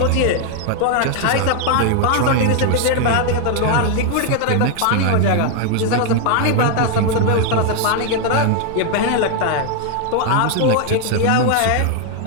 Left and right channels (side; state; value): both; different; correlation 0.00